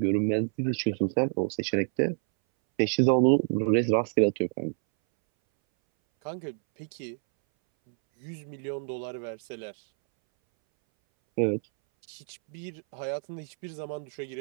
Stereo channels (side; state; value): left; silent; 59 dB below the other